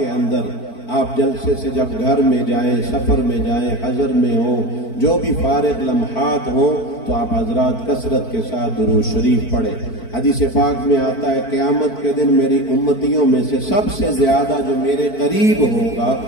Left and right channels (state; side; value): late; right; 4.5 ms